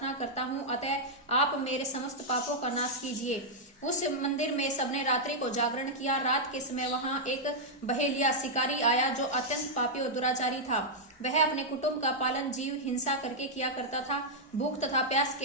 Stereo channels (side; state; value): both; normal; correlation -0.05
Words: करता हूँ, अतः आप मेरे समस्त पापों का नाश कीजिए। उस मंदिर में सबने रात्रि को जागरण किया। रात के समय वहां एक बहेलिया शिकारी आया जो अत्यंत पापी और दुराचारी था। वह अपने कुटुंब का पालन जीव हिंसा करके किया करता था। भूख तथा प्यास